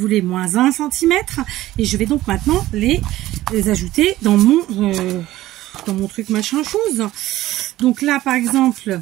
moins 1 cm. Et je vais donc maintenant les ajouter dans mon truc machin chose. Donc là par exemple,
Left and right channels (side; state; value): left; quieter; 15.6 dB